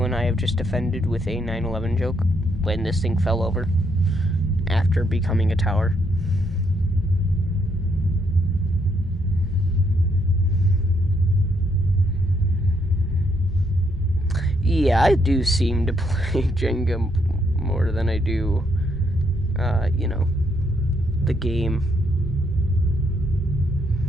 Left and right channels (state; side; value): normal; both; correlation 0.74